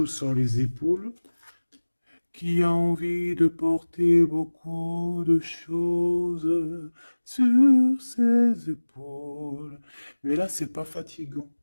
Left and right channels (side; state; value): both; inverted; correlation -1.00